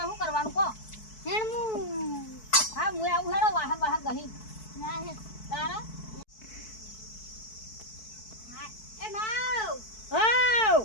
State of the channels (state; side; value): late; right; 4.6 ms